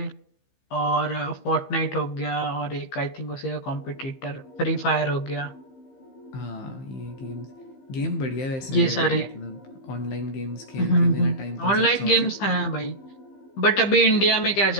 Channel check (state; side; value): late; right; 15 ms